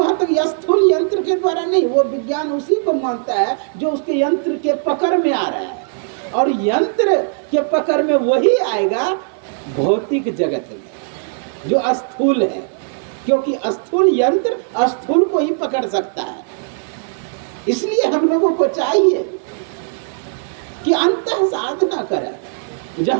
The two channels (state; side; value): silent; left; 65 dB below the other